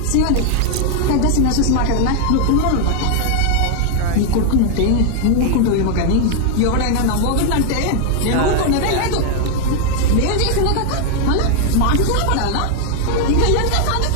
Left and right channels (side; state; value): both; different; correlation 0.00